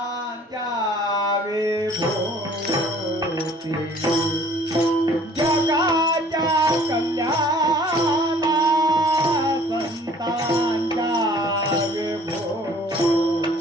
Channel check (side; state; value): both; normal; correlation 0.53